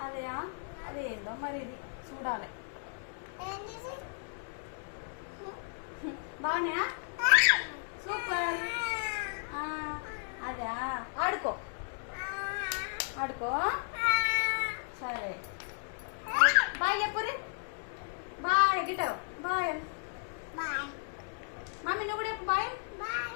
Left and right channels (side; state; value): right; silent; digital silence